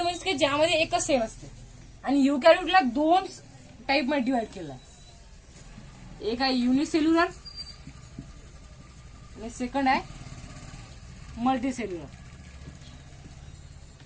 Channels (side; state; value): both; identical; correlation 1.00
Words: म्हणजे ज्यामध्ये एकच सेल असते. आणि युकॅरियोटला 2 टाइप मध्ये डिवाइड केलं आहे. एक आहे युनिसेल्युलर आणि सेकंड आहे मल्टीसेल्युलर.